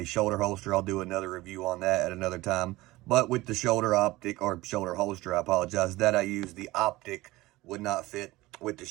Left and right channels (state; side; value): quieter; left; 19.1 dB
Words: shoulder holster. I'll do another review on that at another time. But with the shoulder optic, or shoulder holster, I apologize, that I used, the optic would not fit with the